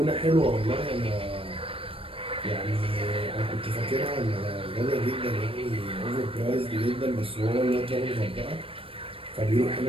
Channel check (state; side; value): late; left; 0.27 ms